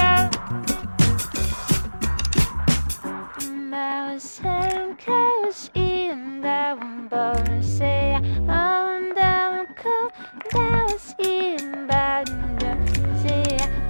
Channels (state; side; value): inverted; both; correlation -1.00